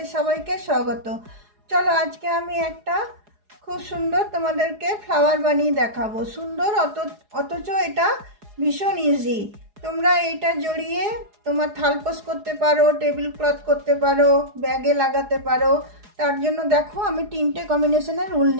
সবাইকে স্বাগত। চলো আজকে আমি একটা খুব সুন্দর তোমাদেরকে ফ্লাওয়ার বানিয়ে দেখাবো। সুন্দর অথচ এটা ভীষণ ইজি। তোমরা এটা জড়িয়ে তোমার থালপোস করতে পারো, টেবিল ক্লথ করতে পারো, ব্যাগে লাগাতে পারো। তার জন্য দেখো আমি তিনটে কম্বিনেশনের উল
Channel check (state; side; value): late; left; 4.8 ms